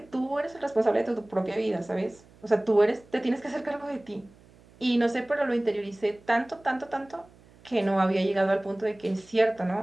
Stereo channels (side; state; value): right; noise; hum, 26 dB below the sound